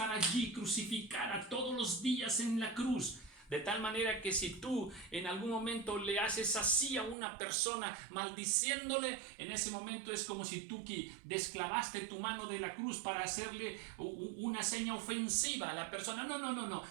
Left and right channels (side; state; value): left; drops out; at 7.2 s